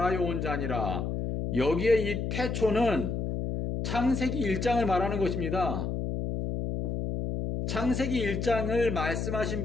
온 자니라. 여기에 이 태초는 창세기 1장을 말하는 것입니다. 창세기 1장을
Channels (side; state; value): left; noise; hum, 2 dB below the sound